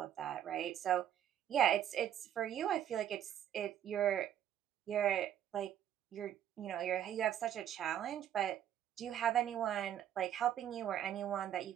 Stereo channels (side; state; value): left; quieter; 10.5 dB